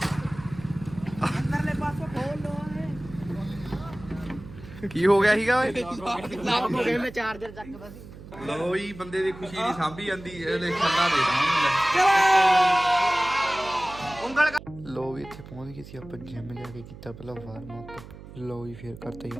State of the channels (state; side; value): noise; right; hum, 16 dB below the sound